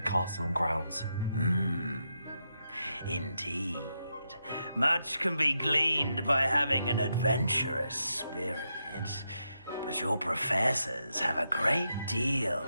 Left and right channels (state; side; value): inverted; both; correlation -0.84